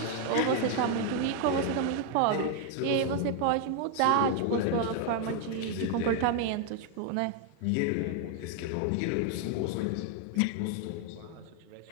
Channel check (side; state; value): both; different; correlation 0.01